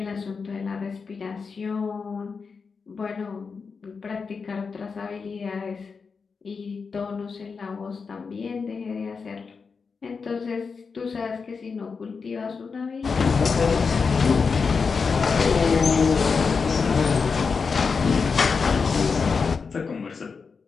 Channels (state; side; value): quieter; right; 5.2 dB